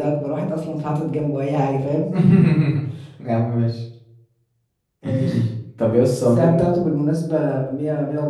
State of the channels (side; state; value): both; identical; correlation 1.00